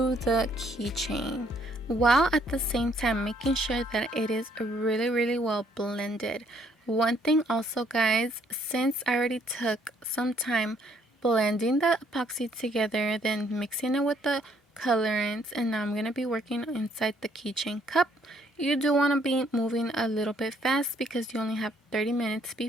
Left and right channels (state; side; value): normal; both; correlation 0.66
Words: the keychain, while at the same time making sure that it is really well blended. One thing also, guys, since I already took some time blending the epoxy together, then mixing it with the colorants, and now I'm gonna be working inside the keychain cup, you do want to be moving a little bit fast, because you only have 30 minutes